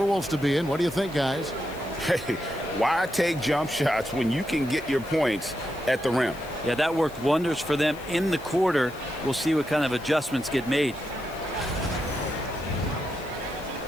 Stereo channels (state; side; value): noise; left; hiss, 22 dB below the sound